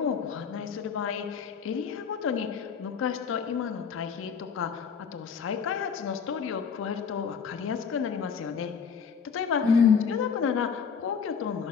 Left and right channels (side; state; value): right; quieter; 6.4 dB